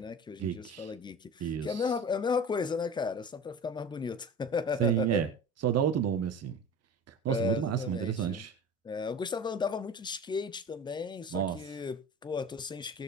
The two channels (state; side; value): normal; both; correlation 0.36